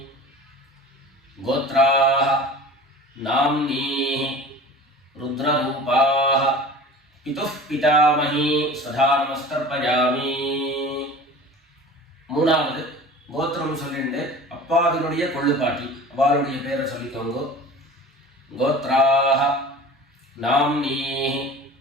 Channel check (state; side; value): normal; both; correlation 0.39